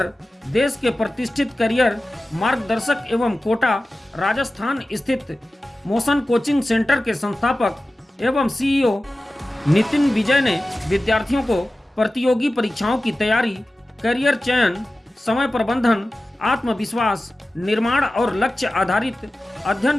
देश के प्रतिष्ठित करियर मार्गदर्शक एवं कोटा राजस्थान स्थित मोशन कोचिंग सेंटर के संस्थापक एवं सीईओ नितिन विजय ने विद्यार्थियों को प्रतियोगी परीक्षाओं की तैयारी, करियर चयन, समय प्रबंधन, आत्मविश्वास निर्माण और लक्ष्य आधारित अध्ययन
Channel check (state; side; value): normal; both; correlation 0.95